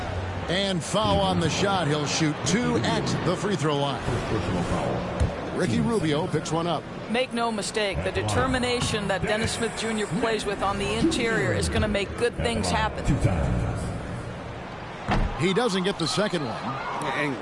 And foul on the shot. He'll shoot 2 at the free throw line. Ricky Rubio picks one up. Make no mistake, the determination that Dennis Smith Jr. plays with on the interior is going to make good things happen. He doesn't get the second one.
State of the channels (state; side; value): identical; both; correlation 1.00